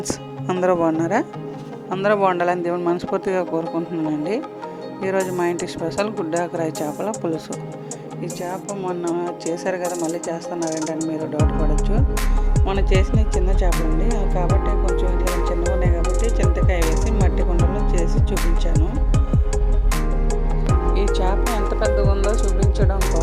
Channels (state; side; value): identical; both; correlation 1.00